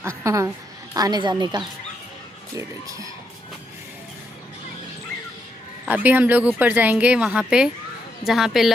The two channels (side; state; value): both; normal; correlation 0.78